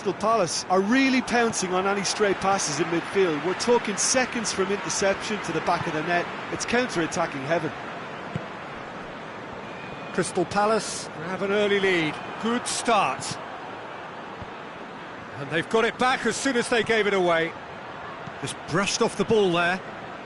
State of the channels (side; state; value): both; identical; correlation 1.00